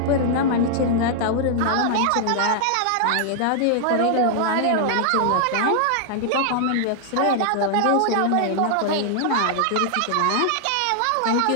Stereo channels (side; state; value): both; different; correlation -0.01